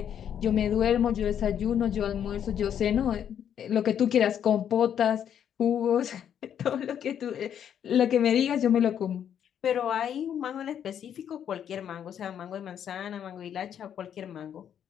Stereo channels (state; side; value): quieter; right; 9.1 dB